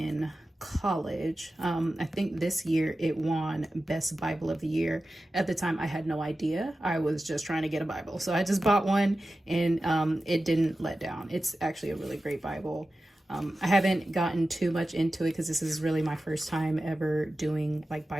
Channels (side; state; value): both; normal; correlation 0.94